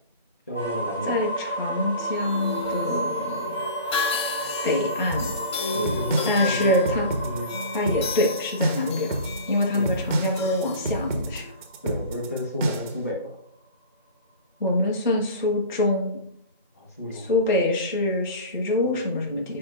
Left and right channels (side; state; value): both; inverted; correlation -0.37